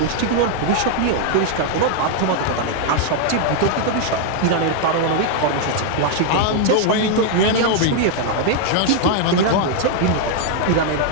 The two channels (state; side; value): different; both; correlation 0.00